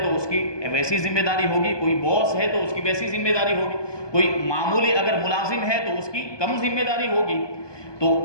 تو اس کی ویسی ذمہ داری ہوگی، کوئی باس ہے تو اس کی ویسی ذمہ داری ہوگی، کوئی معمولی اگر ملازم ہے تو اس کی کم ذمہ داری ہوگی۔ تو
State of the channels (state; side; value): late; right; 1.2 ms